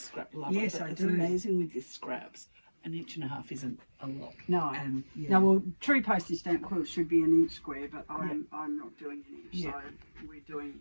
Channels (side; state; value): both; inverted; correlation -1.00